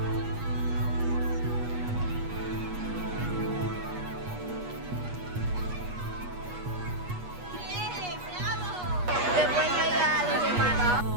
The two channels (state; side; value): late; left; 8.3 ms